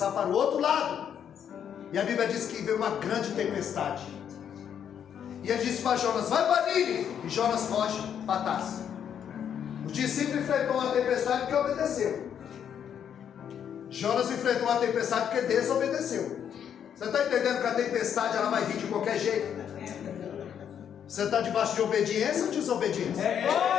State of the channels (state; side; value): quieter; right; 8.7 dB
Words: para o outro lado. E a Bíblia diz que veio uma grande tempestade. E ele disse para Jonas: vai para Nínive. E Jonas foge para Tarso. Os discípulos enfrentou uma tempestade porque obedeceu. Jonas enfrentou uma tempestade porque desobedeceu. Você está entendendo que a tempestade ela vai vir de qualquer jeito? Você está debaixo de obediência ou desobediência?